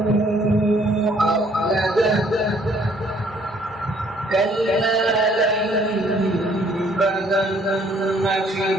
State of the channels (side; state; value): both; normal; correlation 0.62